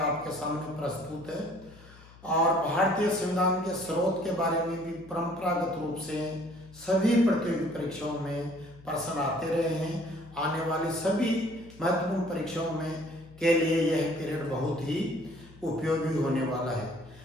सामने प्रस्तुत है। और भारतीय संविधान के स्रोत के बारे में भी परंपरागत रूप से सभी प्रतियोगी परीक्षाओं में प्रश्न आते रहे हैं। आने वाली सभी महत्वपूर्ण परीक्षाओं में के लिए यह पीरियड बहुत ही उपयोगी होने वाला है।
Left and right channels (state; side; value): noise; left; hum, 22 dB below the sound